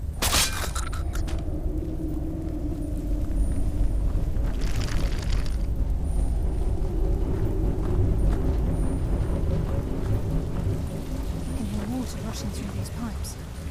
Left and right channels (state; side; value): identical; both; correlation 1.00